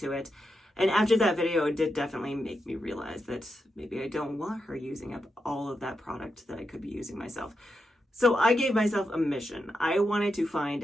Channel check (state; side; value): normal; both; correlation 0.86